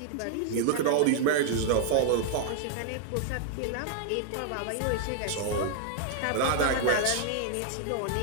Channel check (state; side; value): different; both; correlation 0.00